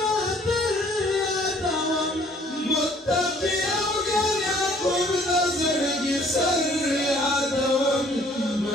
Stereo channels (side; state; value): both; normal; correlation 0.58